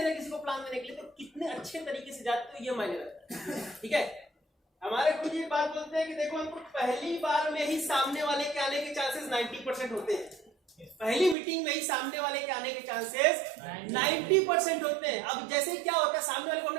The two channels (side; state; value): left; drops out; at 11.4 s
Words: ना किसी को प्लान देने के लिए, तो कितने अच्छे तरीके से जाते हो ये मायने रखता है। ठीक है, हमारे खुद ये बात बोलते हैं कि देखो हमको पहली बार में ही सामने वाले के आने के चांसेस 90% होते हैं। पहली मीटिंग में ही सामने वाले के आने के चांसेस 90% होते हैं। अब जैसे ही क्या होता है, सामने वाले को हमने